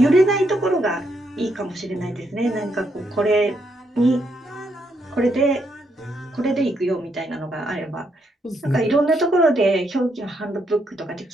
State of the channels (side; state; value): both; normal; correlation 0.77